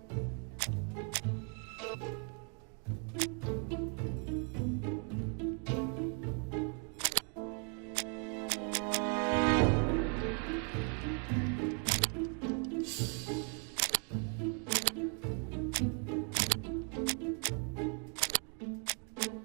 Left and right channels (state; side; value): quieter; left; 39.7 dB